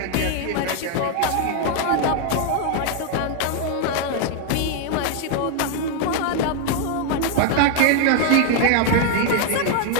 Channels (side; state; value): both; different; correlation 0.00